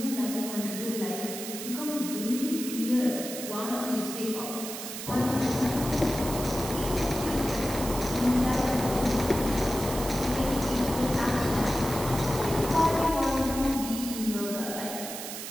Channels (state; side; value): noise; right; hiss, 8 dB below the sound